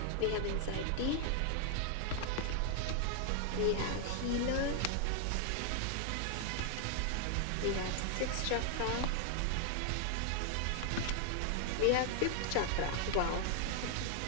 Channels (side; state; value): both; different; correlation 0.00